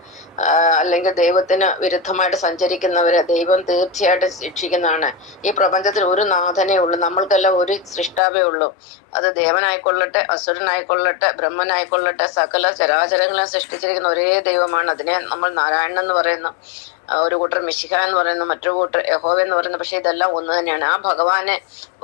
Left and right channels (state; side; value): drops out; right; at 8.2 s